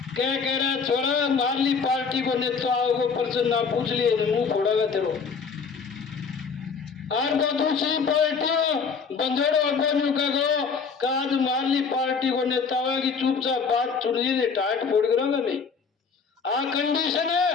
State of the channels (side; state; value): right; quieter; 5.6 dB